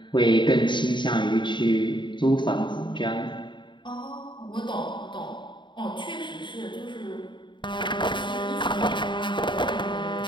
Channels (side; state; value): right; late; 0.23 ms